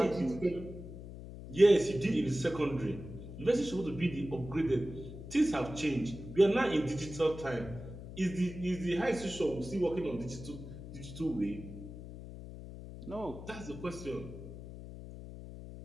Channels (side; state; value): left; noise; hum, 12 dB below the sound